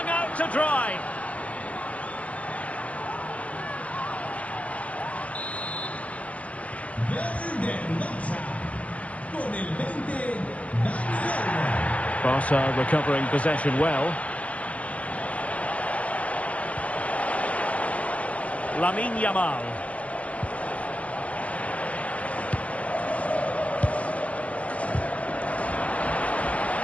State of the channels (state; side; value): late; right; 0.065 ms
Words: out to dry. Barca recovering possession well. Lamine Yamal.